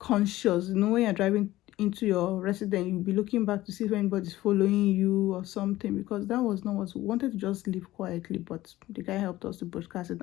When you're driving into your residence, you'll be looking back to see if anybody's following you or something, because that was not what we wanted. To just live quietly, but the guy helped us to broadcast it.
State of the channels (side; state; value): right; quieter; 16.2 dB